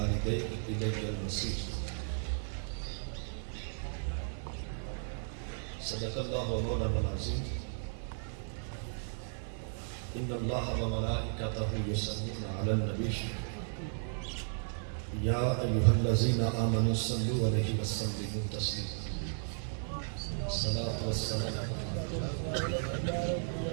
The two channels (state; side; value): silent; left; digital silence